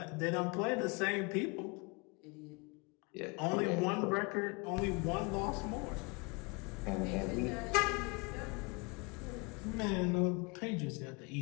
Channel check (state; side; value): quieter; right; 29.6 dB